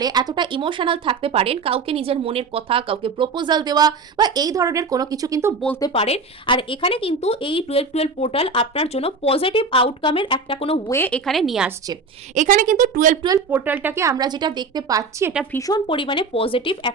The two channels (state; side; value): quieter; left; 4.3 dB